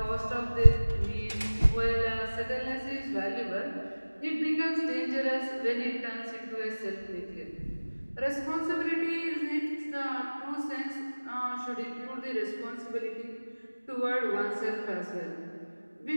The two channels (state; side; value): inverted; both; correlation -1.00